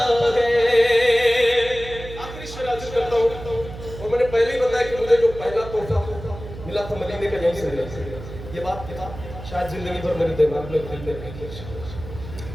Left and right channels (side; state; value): right; noise; hum, 12 dB below the sound